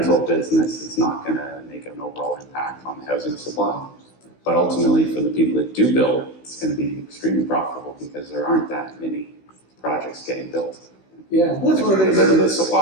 business, it's not going to make an overall impact on the housing supply. But ultimately, for the people that do build, it's going to be extremely profitable because there aren't that many projects getting built. yeah, that's one of the things. The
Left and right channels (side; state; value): right; late; 16 ms